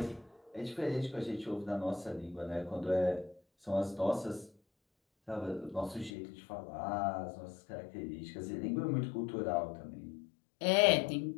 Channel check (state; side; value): drops out; right; at 6.1 s